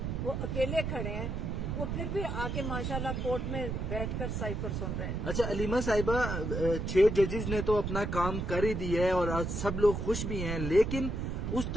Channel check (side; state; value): right; noise; rumble, 2 dB below the sound